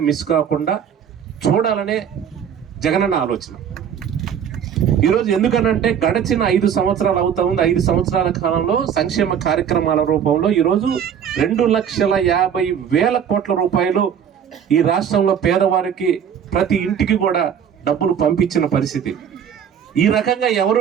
మిస్ కాకుండా చూడాలనే జగనన్న ఆలోచన. ఈరోజు ఎందుకనంటే గడిచిన 5 సంవత్సరాలు అవుతా ఉంది. 5 సంవత్సరాల కాలంలో సంక్షేమ కార్యక్రమాల రూపంలో ఈరోజు 2,50,000 కోట్ల రూపాయలు ఈ రాష్ట్రంలో పేదవారికి ప్రతి ఇంటికి కూడా డబ్బులు పంపించిన పరిస్థితి. ఈ రకంగా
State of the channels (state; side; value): quieter; left; 8.4 dB